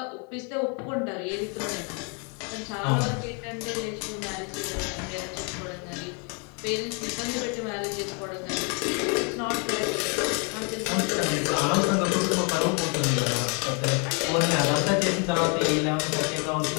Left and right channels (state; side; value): quieter; right; 36.1 dB